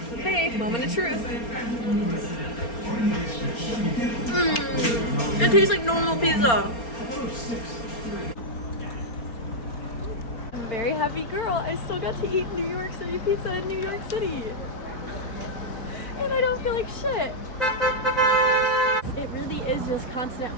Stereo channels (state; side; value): late; right; 4.3 ms